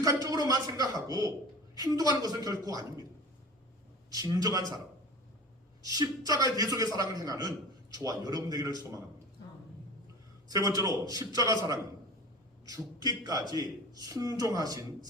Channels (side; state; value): both; normal; correlation 0.37